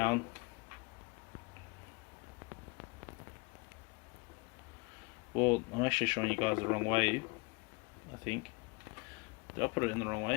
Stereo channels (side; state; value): right; quieter; 29.6 dB